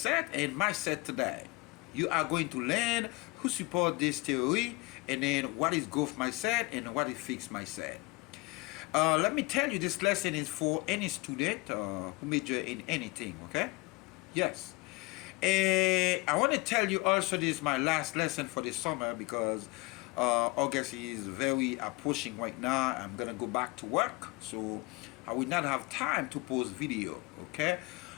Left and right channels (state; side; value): quieter; right; 24.9 dB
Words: and mindset today. You are going to learn who support this theory and then what is growth mindset and what is fixed mindset. Let me tell you, this lesson is for any student who major in anything. Okay? Yes. And I want to tell you also this is my last lesson for the summer because August is very approaching right now. I'm gonna go back to work, so I will not have time to post video. Okay.